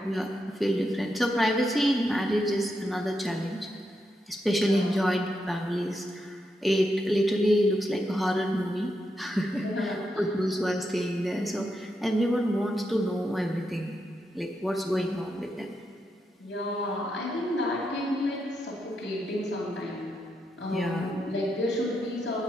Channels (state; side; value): normal; both; correlation 0.83